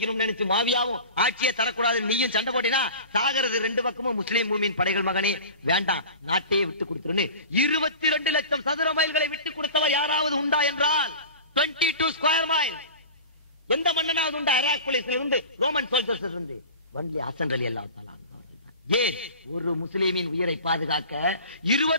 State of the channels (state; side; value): inverted; both; correlation -0.36